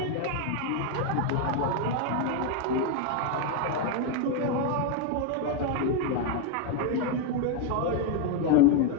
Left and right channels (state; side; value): different; both; correlation 0.01